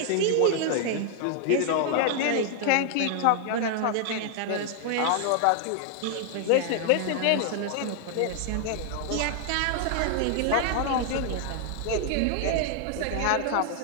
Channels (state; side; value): different; both; correlation 0.00